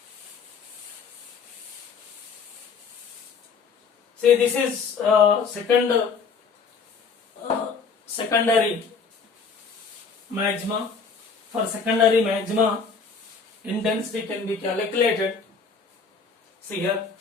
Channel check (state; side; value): quieter; right; 5.2 dB